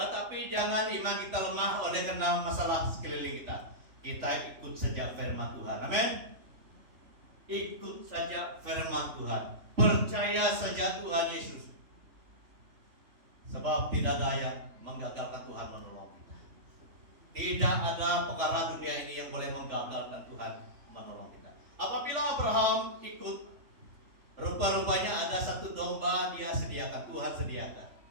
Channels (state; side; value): late; left; 3.4 ms